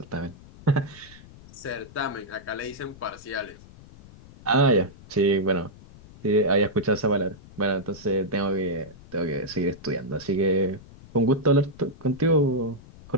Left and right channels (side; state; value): left; noise; rumble, 21 dB below the sound